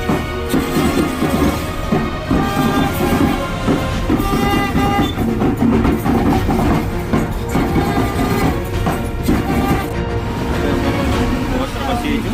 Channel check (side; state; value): both; identical; correlation 1.00